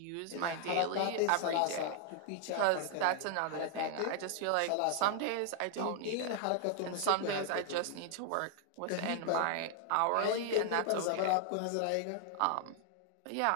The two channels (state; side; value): different; both; correlation 0.00